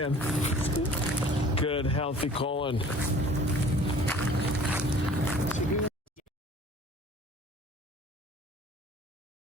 Good, healthy colon.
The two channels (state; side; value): normal; both; correlation 0.49